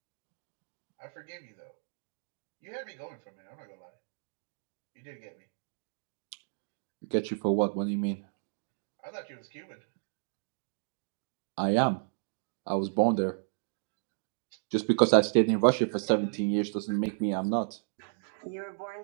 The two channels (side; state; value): left; silent; digital silence